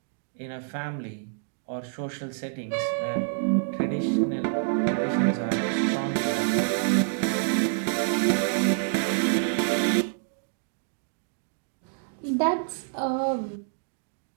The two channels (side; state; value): left; silent; digital silence